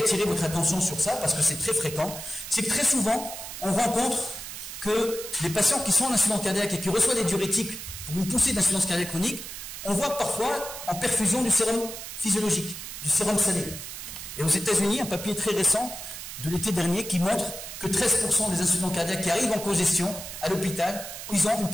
votre attention sur ça parce que c'est très fréquent, c'est que très souvent on rencontre que les patients qui sont en insuffisance cardiaque et qui reçoivent des diurétiques pour une poussée d'insuffisance cardiaque chronique, on voit parfois en perfusion du sérum physiologique, du sérum salé. Et aux États-Unis, un papier très récent de l'été dernier qui montre que 13% des insuffisants cardiaques qui arrivent en congestion à l'hôpital, ils ont une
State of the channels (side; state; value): right; noise; hiss, 9 dB below the sound